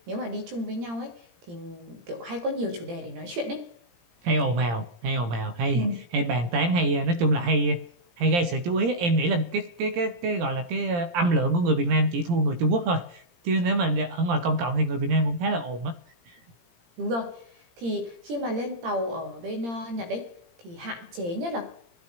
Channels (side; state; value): left; late; 17 ms